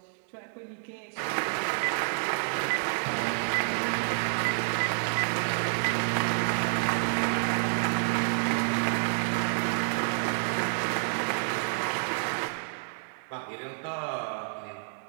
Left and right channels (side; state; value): left; silent; digital silence